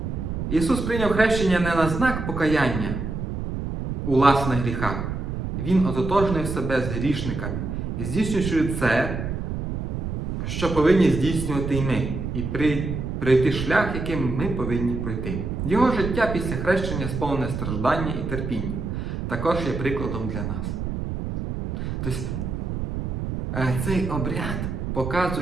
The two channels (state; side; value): noise; right; rumble, 4 dB below the sound